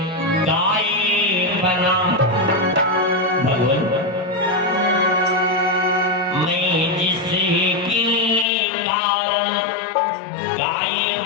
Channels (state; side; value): drops out; right; at 8.5 s